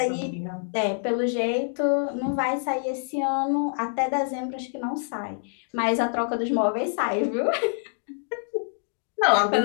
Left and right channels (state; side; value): silent; right; digital silence